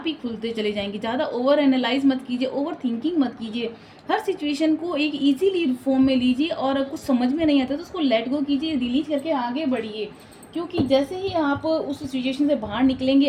ही खुलते चले जाएंगे। ज़्यादा ओवर एनालाइज मत कीजिए, ओवर थिंकिंग मत कीजिए। हर सिचुएशन को एक इजीली फॉर्म में लीजिए, और कुछ समझ में नहीं आता तो उसको लेट गो कीजिए, डिलीट करके आगे बढ़िए। क्योंकि जैसे ही आप उस सिचुएशन से बाहर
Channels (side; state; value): both; identical; correlation 1.00